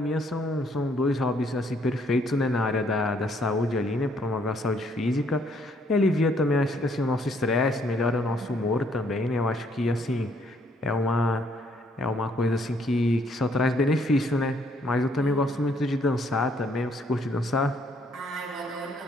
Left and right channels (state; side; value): normal; both; correlation 0.67